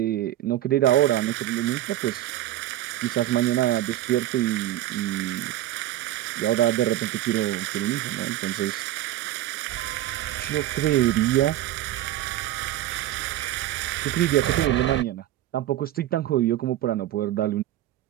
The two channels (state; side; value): quieter; left; 14.0 dB